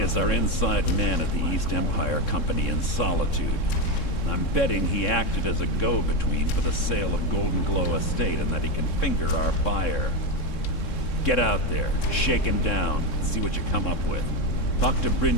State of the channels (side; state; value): right; late; 3.7 ms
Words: is our inside man at the East Empire Company in Solitude. I'm betting he acted as a go-between for the sale of Golden Glow Estate and that he can finger our buyer. Get out there, shake him down, see what you come up with. Talk to